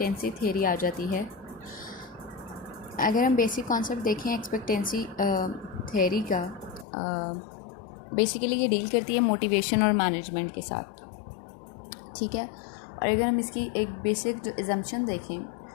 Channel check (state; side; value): drops out; right; at 6.9 s